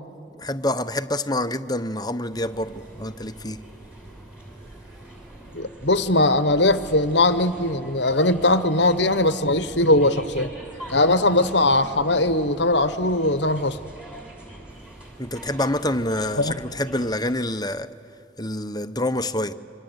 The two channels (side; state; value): both; normal; correlation -0.12